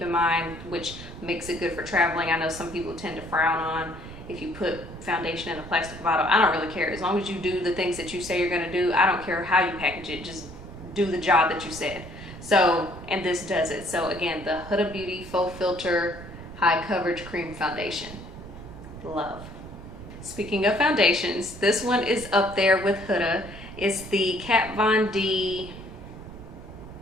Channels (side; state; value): right; noise; rumble, 14 dB below the sound